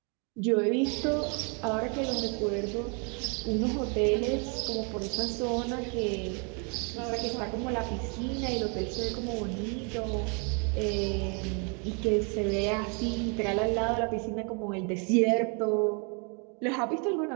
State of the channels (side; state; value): left; quieter; 36.0 dB